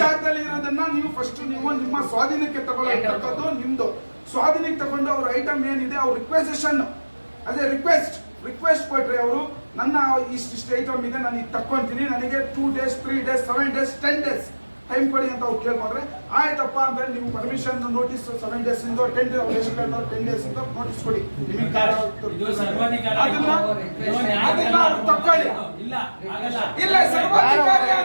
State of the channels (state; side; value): inverted; both; correlation -1.00